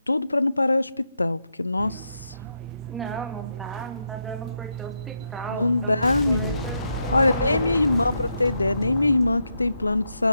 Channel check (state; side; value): inverted; both; correlation -0.83